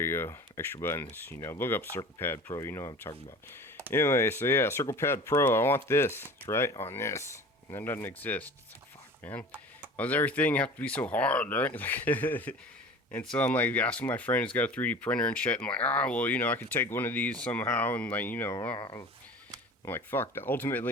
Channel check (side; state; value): both; normal; correlation 0.40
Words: you go. Extra buttons. Look up Circle Pad Pro. You know what I'm talking about. Anyway, so yeah, Circle Pad Pro. I want this. It's right on this. And that doesn't exist. It's like, fuck, man. Why does everything have to be so hard, right? And so I'm like asking my friend who's got a 3D printer and shit. I'm like, I could take one of these somehow. And like, I'm like, fuck.